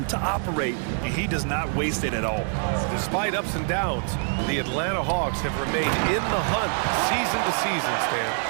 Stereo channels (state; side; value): silent; left; 57 dB below the other